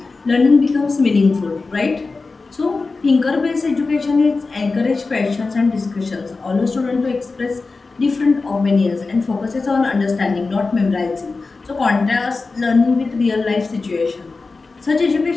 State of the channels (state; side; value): quieter; right; 3.9 dB